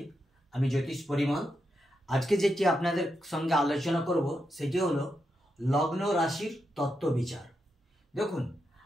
আমি জ্যোতিষ পরিমল। আজকে যেটি আপনাদের সঙ্গে আলোচনা করব সেটি হলো লগ্ন রাশির তত্ত্ব বিচার। দেখুন,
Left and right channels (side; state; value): both; normal; correlation 0.85